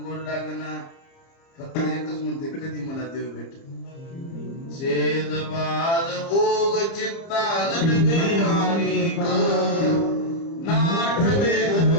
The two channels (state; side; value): late; right; 30 ms